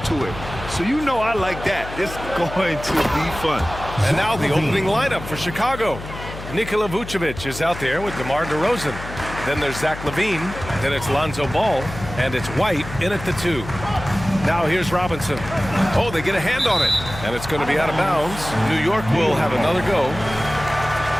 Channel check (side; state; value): left; noise; hum, 11 dB below the sound